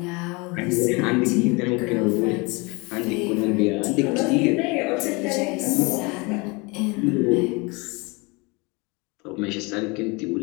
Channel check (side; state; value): right; quieter; 27.6 dB